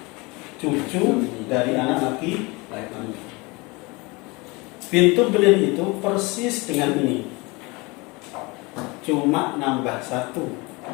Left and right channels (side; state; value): right; quieter; 25.5 dB